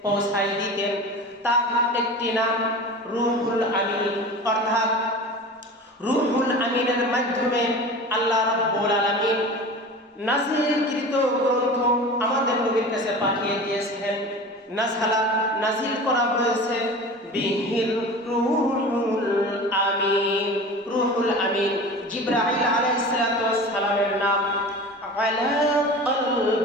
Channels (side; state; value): both; normal; correlation 0.35